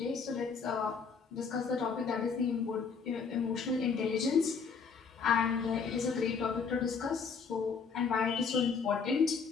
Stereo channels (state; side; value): quieter; right; 5.5 dB